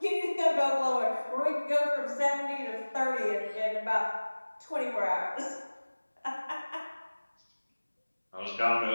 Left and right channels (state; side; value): inverted; both; correlation -1.00